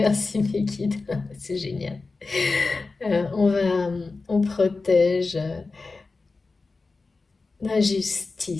mes guides, c'est génial. On protège, La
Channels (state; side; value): quieter; right; 3.9 dB